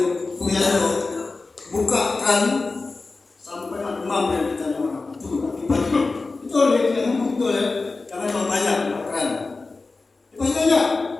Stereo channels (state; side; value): quieter; right; 3.7 dB